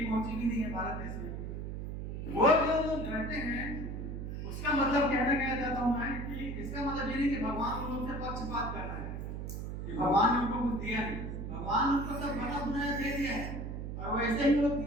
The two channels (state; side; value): noise; right; hum, 5 dB below the sound